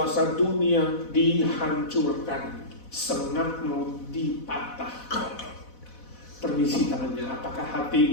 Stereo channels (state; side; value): late; right; 4.1 ms